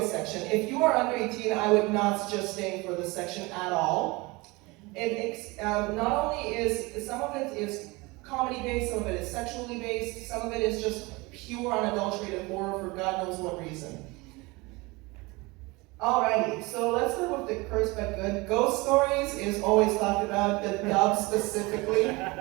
section. If you are under 18, I would not suggest staying for this section at all. Not only is some of it is comedy based, some of it is sexually based, some of it is just pure unadulterated horror for God knows what reason. Alrighty, so let's start with the cursed but good. Ghost stories is always talked about, the dub specifically.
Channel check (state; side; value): quieter; left; 24.2 dB